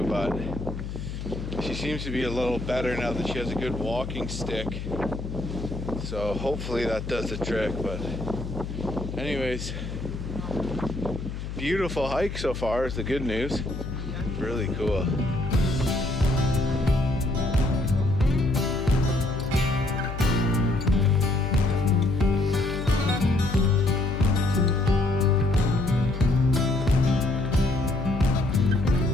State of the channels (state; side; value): noise; left; hum, 7 dB below the sound